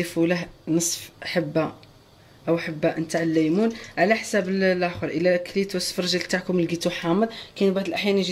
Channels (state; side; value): identical; both; correlation 1.00